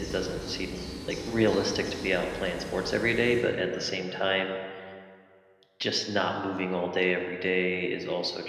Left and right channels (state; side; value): identical; both; correlation 1.00